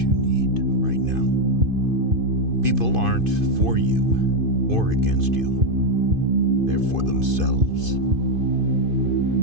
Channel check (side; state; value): left; late; 2.5 ms